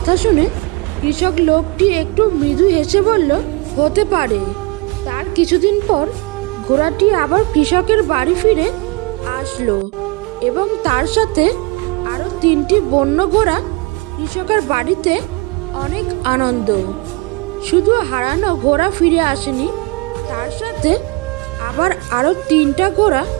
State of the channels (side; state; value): left; quieter; 25.6 dB